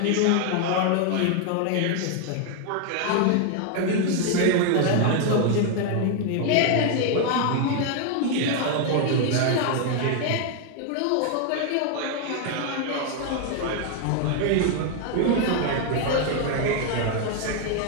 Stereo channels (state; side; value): different; both; correlation 0.00